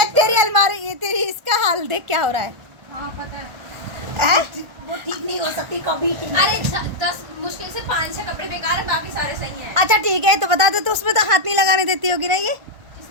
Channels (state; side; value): late; left; 1.5 ms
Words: तेरी अलमारी, ये तेरी, इसका हाल देख क्या हो रहा है। हाँ पता है। वो ठीक नहीं हो सकती कभी। अरे 10 मुश्किल से 5-6 कपड़े बेकार है, बाकी सारे सही हैं। अच्छा ठीक है, तो बता दे, तो उसमें तो हाथ नहीं लगाने देती होगी ना ये?